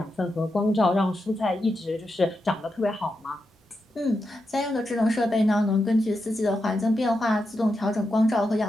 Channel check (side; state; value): both; normal; correlation 0.87